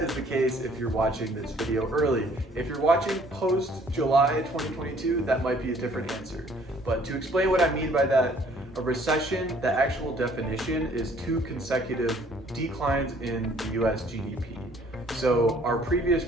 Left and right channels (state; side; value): normal; both; correlation 0.59